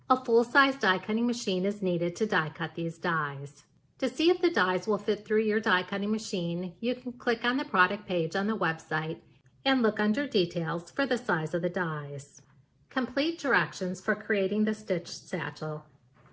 A full-size die cutting machine is needed to die cut these dies. To see if the dies will fit through your die cutting machine, you can click on the product page on the website and look under details for the size of the dies. Complete directions for creating the stitched satchel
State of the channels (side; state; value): both; identical; correlation 1.00